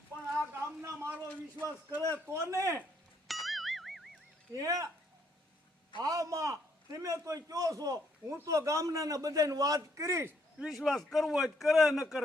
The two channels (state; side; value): normal; both; correlation 0.71